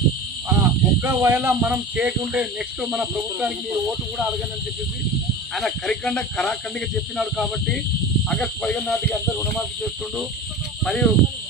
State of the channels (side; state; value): both; normal; correlation 0.33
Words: ఒక్కవేళ మనం చేయకుంటే నెక్స్ట్ మన ప్రభుత్వానికి మీరు ఓటు కూడా అడగనని చెప్పేసి ఆయన కరాఖండిగా చెప్పినాడు. కాబట్టి ఆగస్టు 15 నాటికి అందరూ రుణమాఫీ చేస్తుండు. మరియు